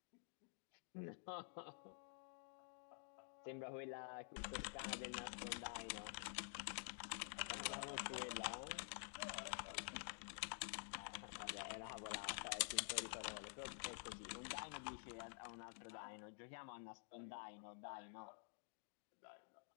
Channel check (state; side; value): silent; right; digital silence